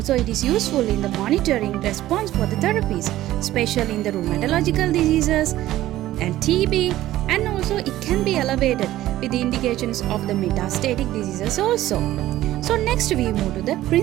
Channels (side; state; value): left; quieter; 14.7 dB